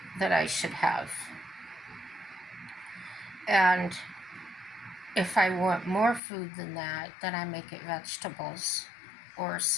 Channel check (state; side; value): drops out; right; at 6.2 s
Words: that I should have. And if I want more food than that, then I make it vegetables or